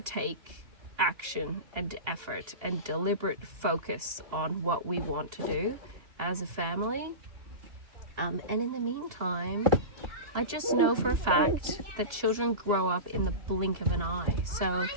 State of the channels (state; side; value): late; left; 2.7 ms